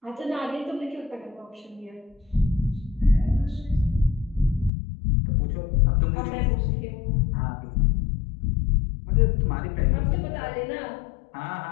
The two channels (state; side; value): drops out; right; at 4.7 s